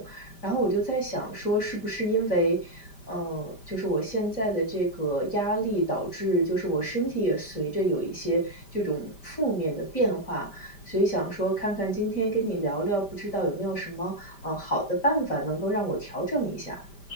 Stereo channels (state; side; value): late; right; 5.1 ms